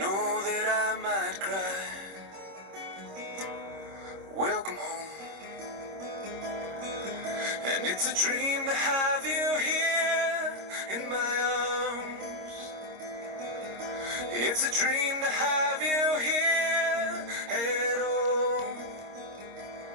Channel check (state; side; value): late; left; 26 ms